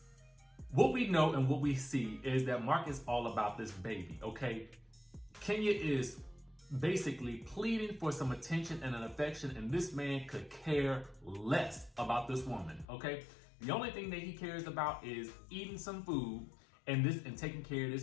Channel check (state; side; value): drops out; right; at 12.9 s